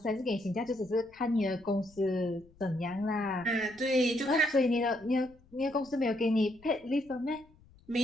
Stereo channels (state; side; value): noise; left; rumble, 28 dB below the sound